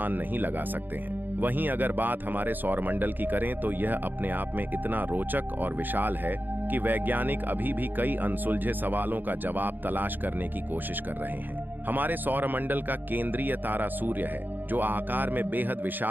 नहीं लगा सकते हैं। वहीं अगर बात हमारे सौरमंडल की करें तो यह अपने आप में इतना रोचक और विशाल है कि वैज्ञानिक अभी भी कई अनसुलझे सवालों का जवाब तलाश करने की कोशिश कर रहे हैं। हमारे सौरमंडल का केंद्रीय तारा सूर्य है, जो आकार में बेहद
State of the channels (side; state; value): left; late; 0.090 ms